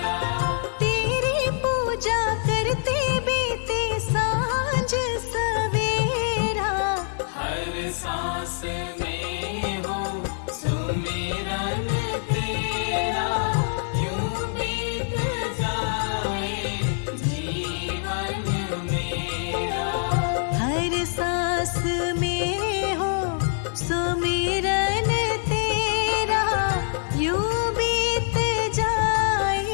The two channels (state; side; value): silent; right; digital silence